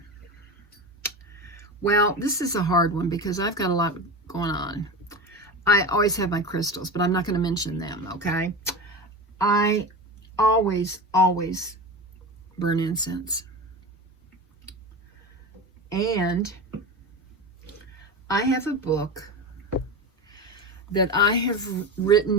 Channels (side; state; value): both; normal; correlation 0.25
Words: Well, this is a hard one because I've got a lot going on. I always have my crystals, but I'm not going to mention them, okay? I always burn incense. And I have a book that I have